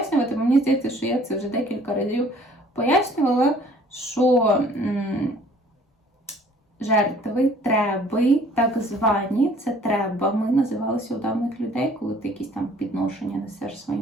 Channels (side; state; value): both; normal; correlation 0.55